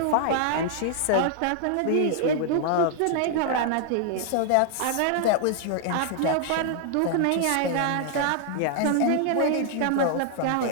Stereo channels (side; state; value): both; different; correlation 0.00